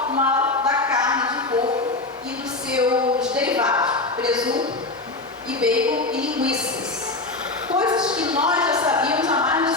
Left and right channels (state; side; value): quieter; right; 3.2 dB